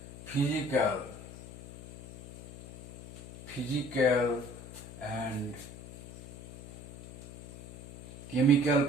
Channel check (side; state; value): left; noise; hum, 13 dB below the sound